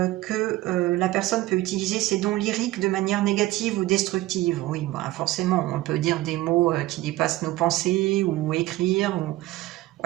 la personne peut utiliser ses dons lyriques de manière négative ou destructive. Oui, bah, forcément, on peut dire des mots qui dépassent nos pensées ou écrire. Ou...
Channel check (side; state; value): left; quieter; 17.1 dB